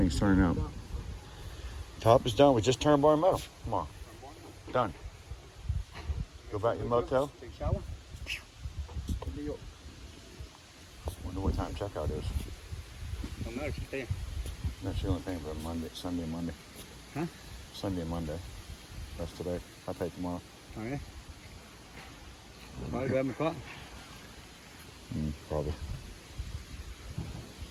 turning out. Top is done. We just turned bar metal. Come on. Done. Go back to the motel. Take a shower. Wonder what time checkout is. Don't know, she's paying. No, she only paying for Monday, Sunday and Monday. Huh? Sunday and Monday. That's today. I pay tomorrow. Oh, yeah? Probably grab my car. Probably.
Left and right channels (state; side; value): identical; both; correlation 1.00